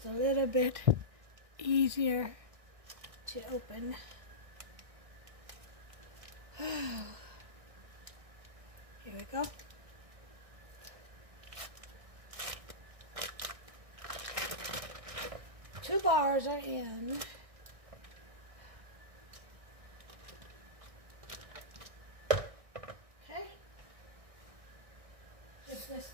a little bit easier to open. Here we go. Two bars are in. Okay. Give this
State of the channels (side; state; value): left; late; 1.6 ms